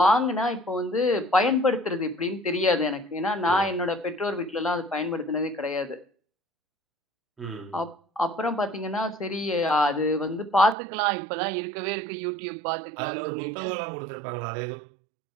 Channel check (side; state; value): left; drops out; at 10.8 s